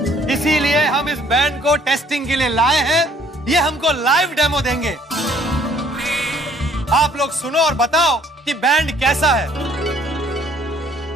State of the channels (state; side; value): normal; both; correlation 0.61